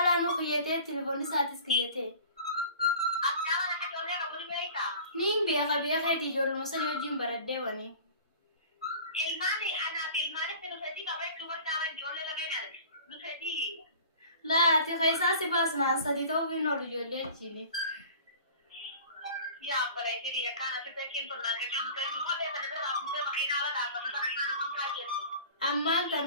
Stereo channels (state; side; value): inverted; both; correlation -0.43